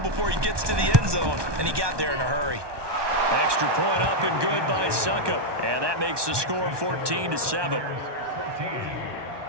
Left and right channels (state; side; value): late; left; 1.2 ms